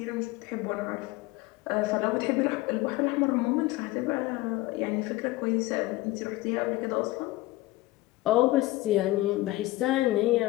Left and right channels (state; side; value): quieter; right; 18.6 dB